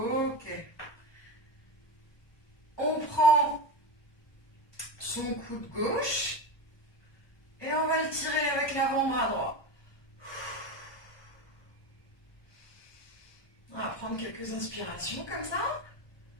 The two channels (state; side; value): late; right; 1.2 ms